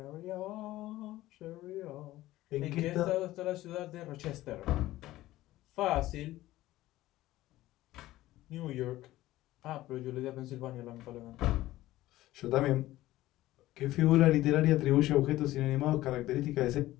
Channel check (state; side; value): quieter; right; 16.1 dB